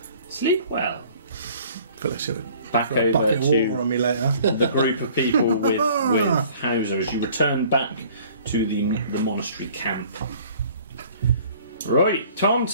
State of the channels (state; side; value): inverted; both; correlation -0.53